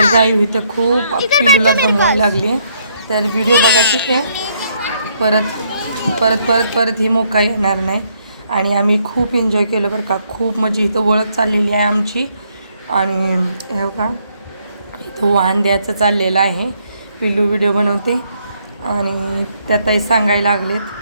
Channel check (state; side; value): inverted; both; correlation -0.71